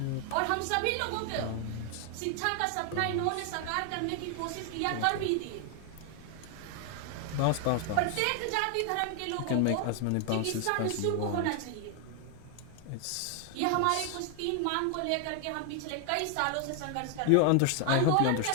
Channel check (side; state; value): both; different; correlation 0.00